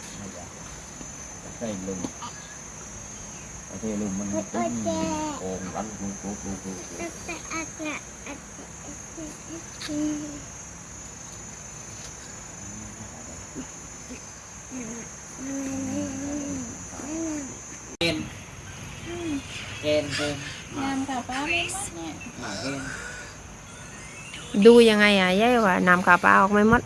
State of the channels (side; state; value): both; identical; correlation 1.00